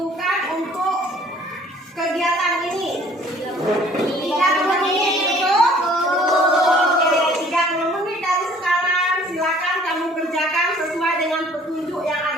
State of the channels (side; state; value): both; normal; correlation 0.55